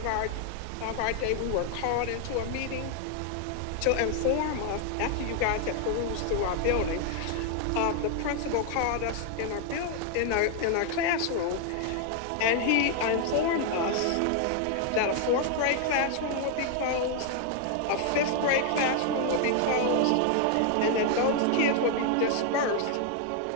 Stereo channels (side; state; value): both; different; correlation 0.00